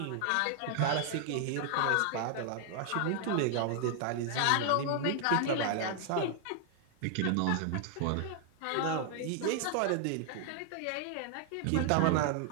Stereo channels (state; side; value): different; both; correlation 0.00